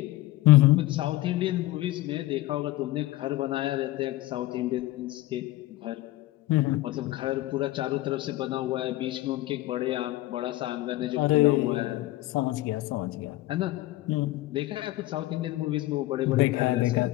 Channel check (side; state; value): right; quieter; 17.1 dB